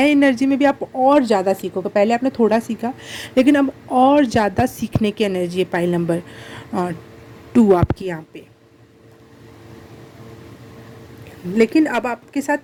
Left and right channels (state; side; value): identical; both; correlation 1.00